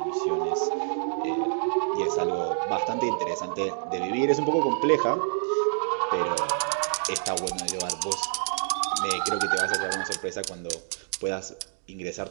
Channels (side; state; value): left; silent; digital silence